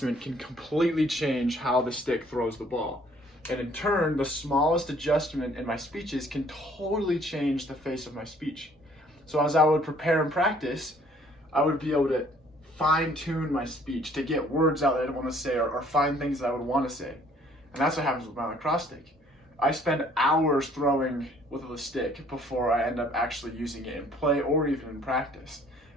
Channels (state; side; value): normal; both; correlation 0.59